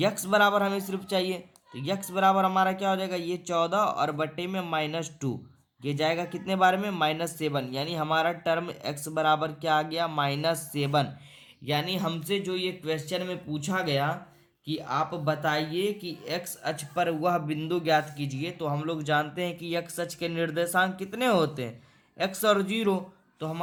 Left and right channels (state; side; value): identical; both; correlation 1.00